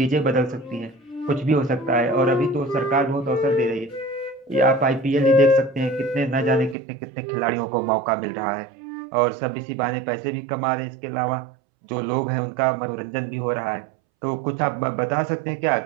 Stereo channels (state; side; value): drops out; left; at 6.8 s